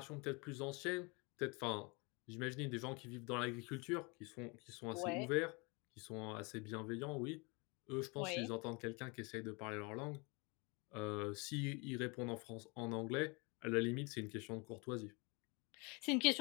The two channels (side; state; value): right; quieter; 29.4 dB